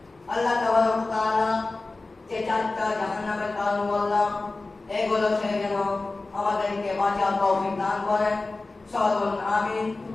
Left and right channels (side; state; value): right; quieter; 3.4 dB